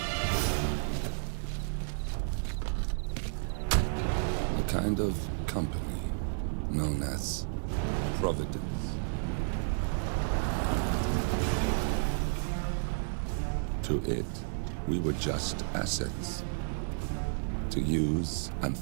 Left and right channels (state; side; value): silent; left; digital silence